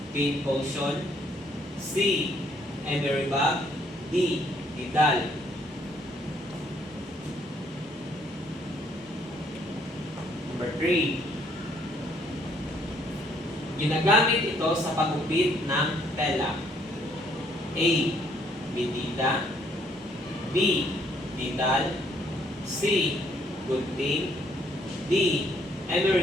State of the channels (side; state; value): both; normal; correlation 0.67